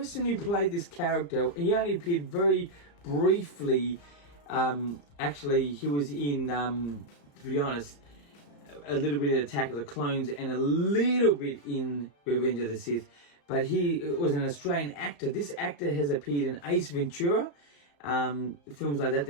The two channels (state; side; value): late; right; 35 ms